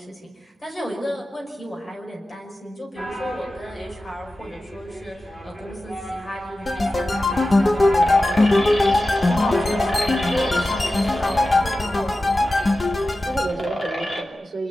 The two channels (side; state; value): both; normal; correlation 0.94